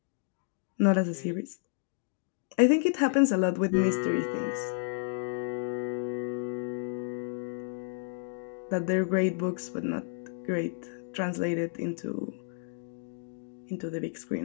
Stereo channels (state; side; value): silent; right; digital silence